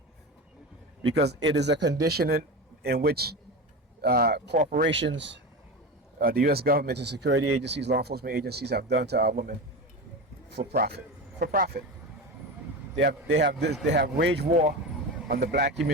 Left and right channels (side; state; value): both; normal; correlation 0.24